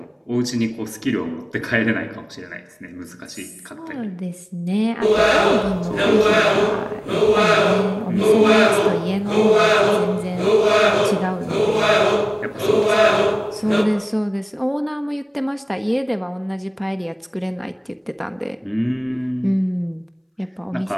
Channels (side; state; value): both; identical; correlation 1.00